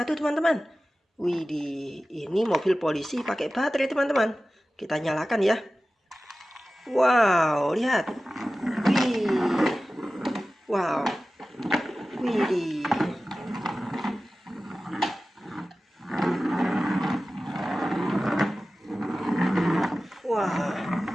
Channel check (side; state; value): both; normal; correlation 0.95